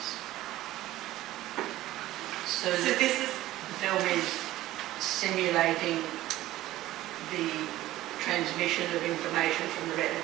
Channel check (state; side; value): quieter; left; 15.5 dB